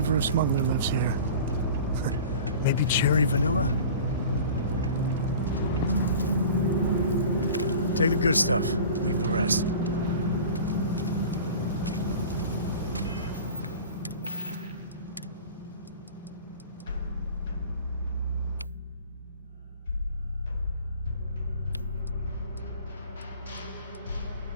of smuggler lives here. Maybe cherry vanilla? Take the good stuff, leave the rest.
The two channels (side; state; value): both; inverted; correlation -0.40